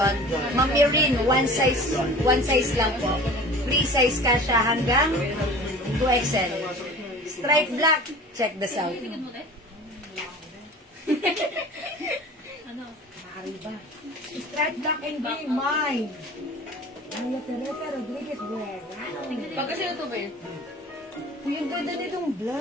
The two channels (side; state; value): both; normal; correlation 0.41